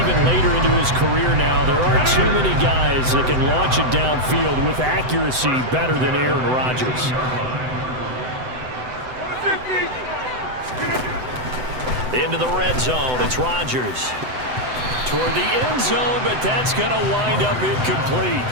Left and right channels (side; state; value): left; late; 7.9 ms